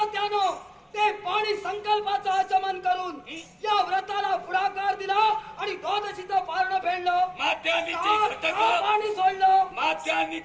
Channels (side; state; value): both; identical; correlation 1.00